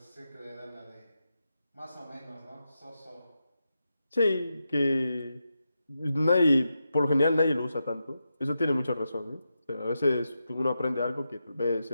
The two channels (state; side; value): inverted; both; correlation -0.88